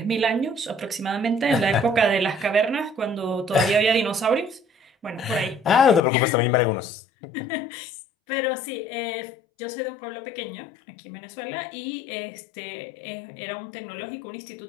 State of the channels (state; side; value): drops out; right; at 6.0 s